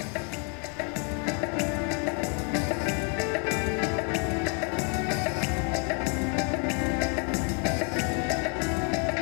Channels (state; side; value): quieter; right; 37.6 dB